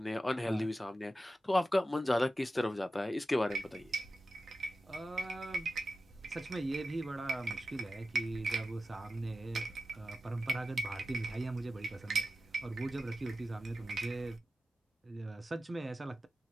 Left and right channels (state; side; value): normal; both; correlation 0.93